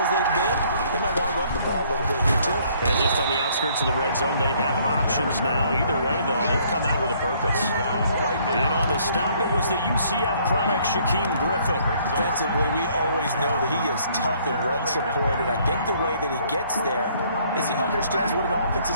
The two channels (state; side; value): inverted; both; correlation -0.63